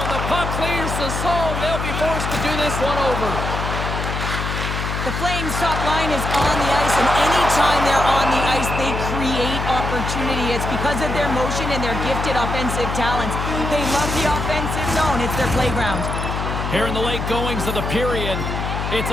and the puck clears the zone. They'll be forced to do this one over. The Flames' top line is on the ice, and anytime they're on the ice, they create opportunity. It's because of their motion and their gifted offensive talents. They love the offensive zone. It's their playground. Here in the late goings of the period, it's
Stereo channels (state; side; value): noise; left; hum, 3 dB below the sound